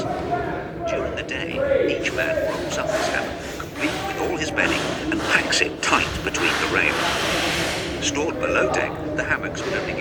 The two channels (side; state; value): both; identical; correlation 1.00